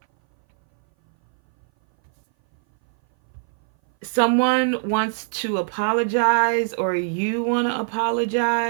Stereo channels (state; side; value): silent; left; 60 dB below the other